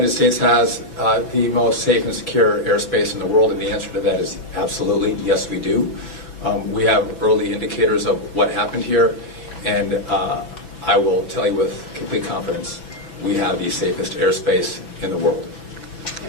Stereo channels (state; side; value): late; right; 6.0 ms